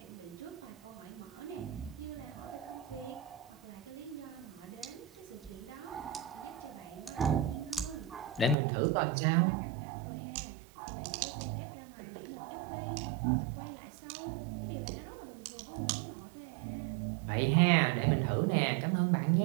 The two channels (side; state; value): left; drops out; at 8.6 s